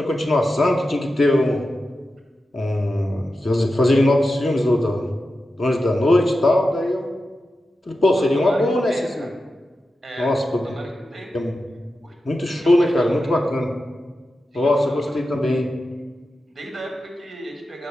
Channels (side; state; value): both; normal; correlation 0.91